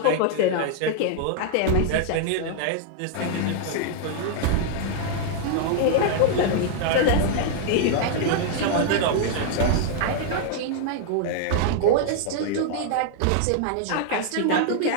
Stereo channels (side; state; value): both; different; correlation 0.00